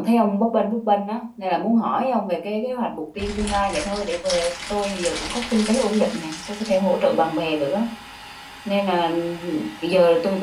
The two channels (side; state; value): both; identical; correlation 1.00